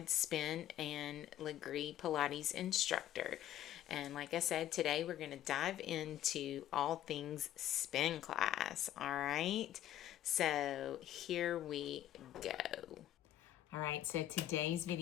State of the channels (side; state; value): right; quieter; 12.3 dB